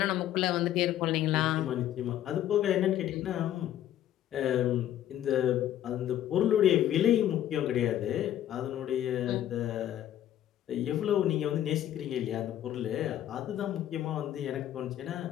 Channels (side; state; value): right; quieter; 11.9 dB